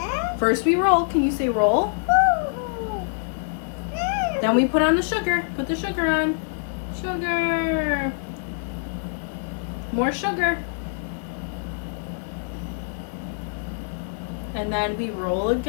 First we roll. Can you say roll? Then we put on the sugar. Put the sugar on. Sugar. More sugar. And then we roll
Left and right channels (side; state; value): right; silent; 62 dB below the other